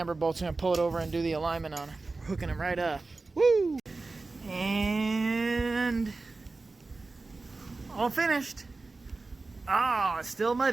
bolts, going to pull it over and do the alignment on it. We're hooking them right up. Woo! And all finished. Ah, it's still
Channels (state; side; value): quieter; left; 3.6 dB